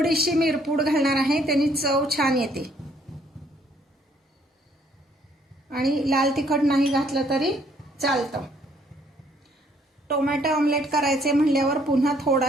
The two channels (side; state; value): both; normal; correlation 0.65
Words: मिरपूड घालणार आहे, त्याने चव छान येते. आणि लाल तिखट नाही घातलं तरी चालतं. टोमॅटो ऑमलेट करायचे म्हणल्यावर पुन्हा